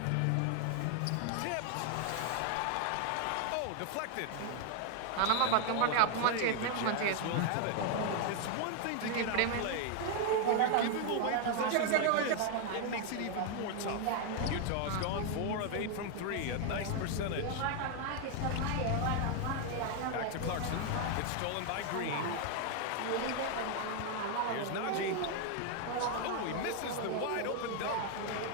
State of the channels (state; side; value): different; both; correlation 0.00